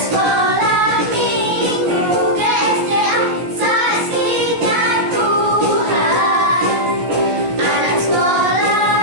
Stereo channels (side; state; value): left; late; 16 ms